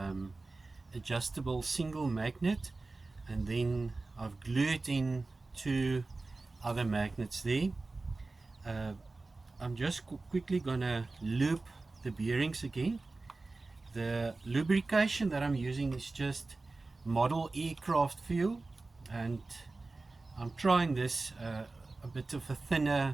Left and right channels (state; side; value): quieter; left; 3.4 dB